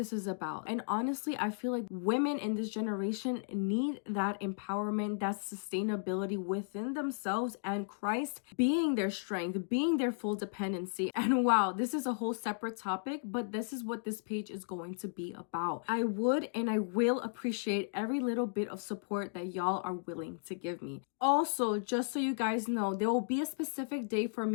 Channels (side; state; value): right; silent; digital silence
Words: is about. And honestly, I feel like women in this generation need that empowerment, that sustainability within themselves, and Christ being their strength, being their full dependency. And wow, this is a whole separate topic, but this is what this page is going to be about. I would and I will appreciate every little bit of support that y'all are willing to give me. Also, just so you guys know, there will be a specific day for